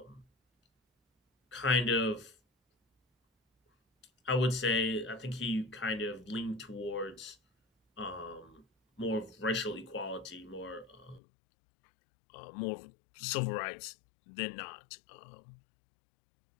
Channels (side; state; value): right; drops out; at 11.2 s